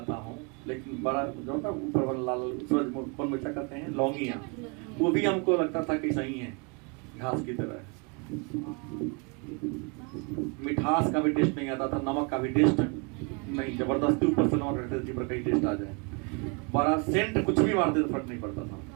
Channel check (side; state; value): left; quieter; 33.1 dB